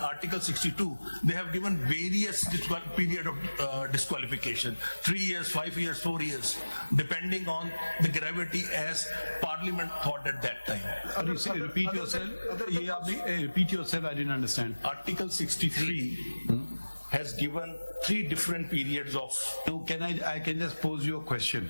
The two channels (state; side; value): inverted; both; correlation -1.00